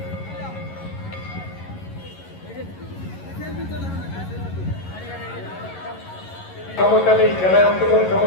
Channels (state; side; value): late; right; 11 ms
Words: সমস্যা নেই, খেলায় অংশগ্রহণ